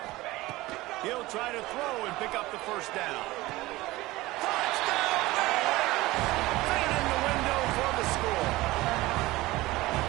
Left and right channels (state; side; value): quieter; left; 19.2 dB